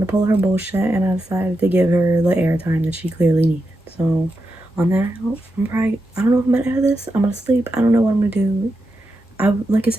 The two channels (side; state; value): both; normal; correlation 0.87